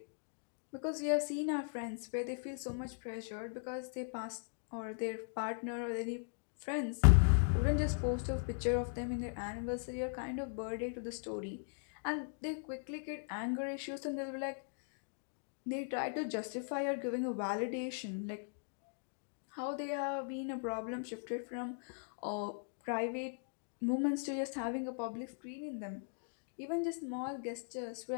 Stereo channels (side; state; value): right; silent; digital silence